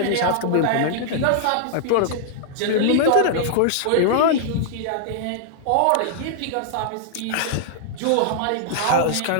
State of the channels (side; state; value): both; different; correlation -0.01